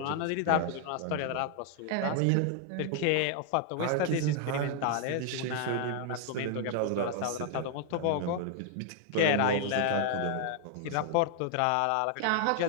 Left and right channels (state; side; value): different; both; correlation 0.00